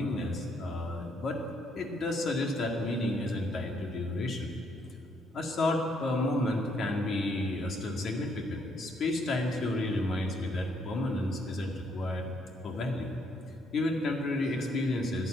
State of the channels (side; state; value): both; normal; correlation 0.71